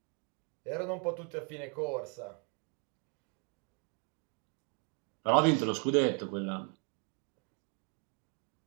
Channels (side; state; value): left; quieter; 36.0 dB